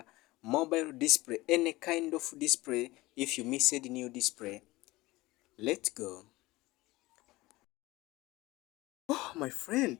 mobile display, any kind of display if you missed new display. Let's go. Oh, my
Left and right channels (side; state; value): right; quieter; 19.8 dB